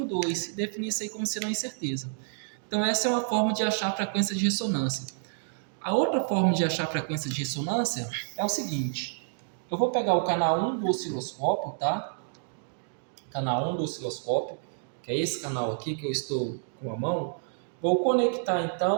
2 e definir isso aí como sendo uma incerteza. Então, essa é uma forma de achar a frequência de ressonância. A outra forma de achar a frequência de ressonância é o seguinte. Eu vou pegar o canal 1 do osciloscópio, tá? Canal 1 do osciloscópio, que é esse canal aqui que eu estou com a mão. Vou conectar,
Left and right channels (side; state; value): left; silent; digital silence